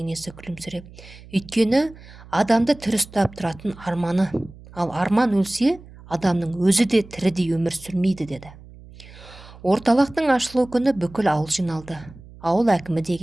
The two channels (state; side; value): noise; right; hum, 20 dB below the sound